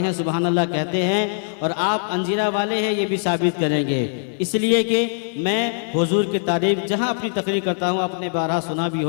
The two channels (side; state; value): right; silent; 65 dB below the other